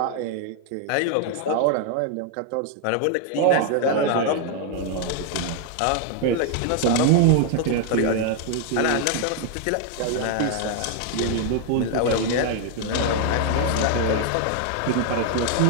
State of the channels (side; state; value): both; different; correlation 0.00